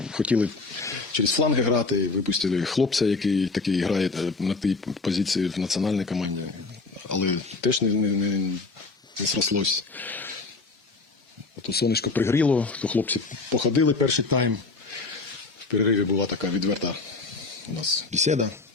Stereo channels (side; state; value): right; quieter; 3.8 dB